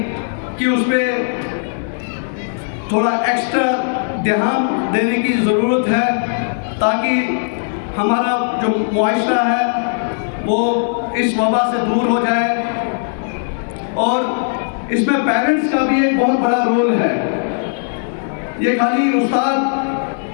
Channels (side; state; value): right; silent; 63 dB below the other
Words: कि उस पर थोड़ा एक्स्ट्रा ध्यान देने की ज़रूरत है, ताकि हमारा जो मुआशरा है वो इस वबा से दूर हो जाए। और इसमें पेरेंट्स का भी एक बहुत बड़ा रोल है। ये खाली